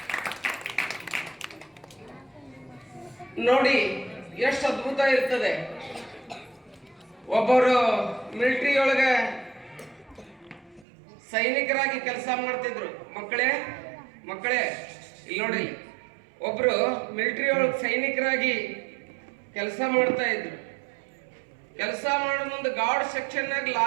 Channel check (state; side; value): drops out; left; at 10.9 s